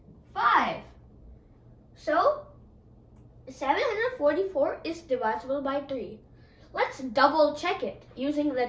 5. So 744 is divisible by 3. Let's double check it using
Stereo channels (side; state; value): both; identical; correlation 1.00